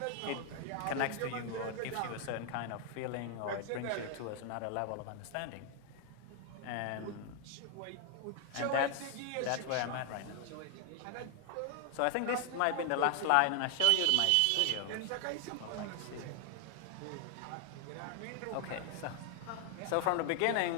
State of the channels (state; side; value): different; both; correlation 0.00